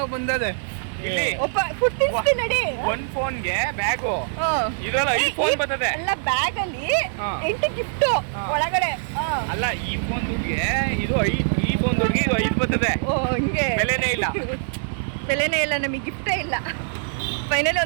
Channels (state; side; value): silent; left; 63 dB below the other